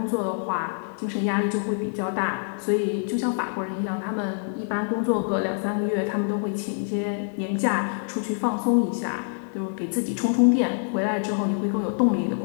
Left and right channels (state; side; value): silent; right; digital silence